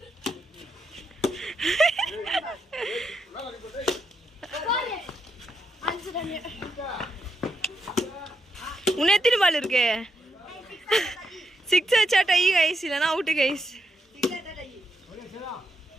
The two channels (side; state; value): both; normal; correlation 0.81